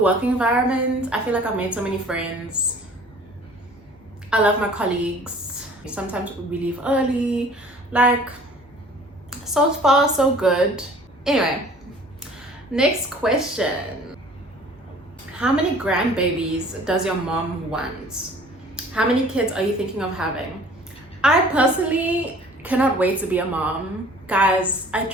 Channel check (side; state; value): both; normal; correlation 0.50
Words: environment. I feel like I've made so many friends. I love my colleagues. Sometimes we leave early. Like, so far so good. Anyway, next question. How many grandbabies does your mom want? How many kids are you thinking of having? I personally cannot wait to be a mom. Guys, I